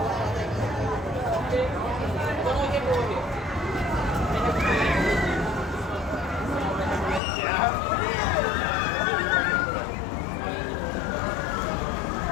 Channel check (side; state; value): right; drops out; at 7.2 s